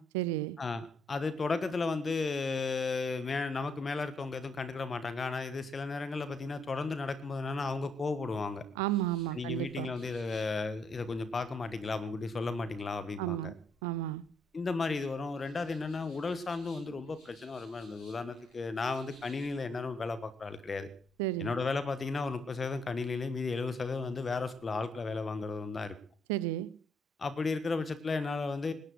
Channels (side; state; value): both; normal; correlation 0.73